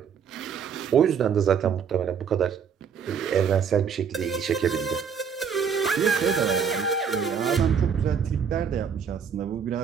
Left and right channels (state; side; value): quieter; left; 6.9 dB